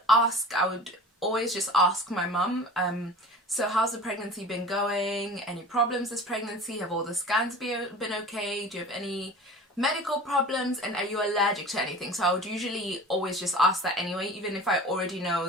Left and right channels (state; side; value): normal; both; correlation 0.39